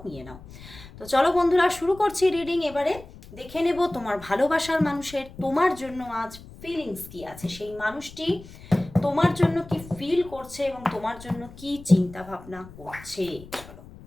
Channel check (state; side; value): noise; left; rumble, 18 dB below the sound